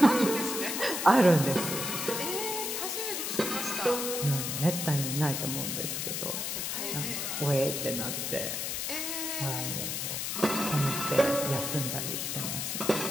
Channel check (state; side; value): noise; left; hiss, 2 dB below the sound